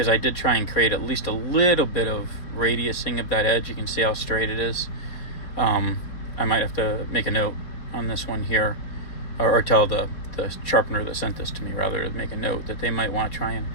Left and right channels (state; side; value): late; right; 4.3 ms